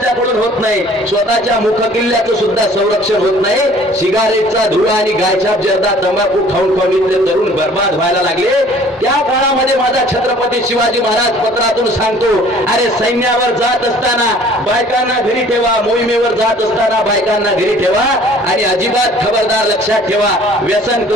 होत नाही, स्वतःच्या मुख किल्ल्याचं सुद्धा संरक्षण होत नाही. सिगारेटचा धुळा आणि गायछाप जर्दा तंबाखू खाऊन खाऊन इथले तरुण बर्बाद व्हायला लागले. त्या काळामध्ये माझा छत्रपती शिवाजी महाराज पत्रातून सांगतो, अरे सैन्यावर जात असताना बायकांना घरी ठेवा, मोहिमेवर जात असताना बायकांना घरी ठेवा, आणि अजिबात खबरदार लक्षात ठेवा, व्यसन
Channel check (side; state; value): both; normal; correlation 0.52